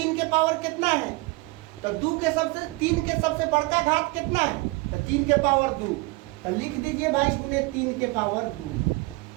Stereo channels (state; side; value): quieter; left; 24.7 dB